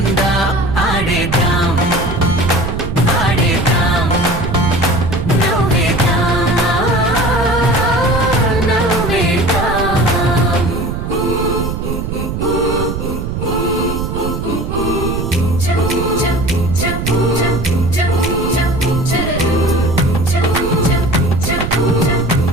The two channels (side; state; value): right; noise; rumble, 4 dB below the sound